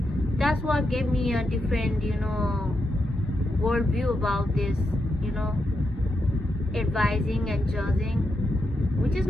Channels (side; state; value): both; normal; correlation 0.84